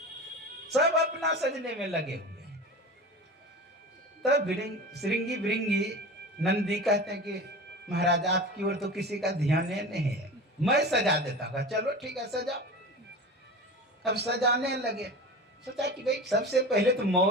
सब अपना सजने में लगे हुए हैं। तब श्रृंगी भृंगी नंदी कहते हैं कि महाराज आपकी ओर तो किसी का ध्यान नहीं है, मैं सजा देता हूँ। चलो ठीक है सजाओ। अब सजाने लगे। सोचा कि भाई सबसे पहले तो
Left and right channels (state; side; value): normal; both; correlation 0.32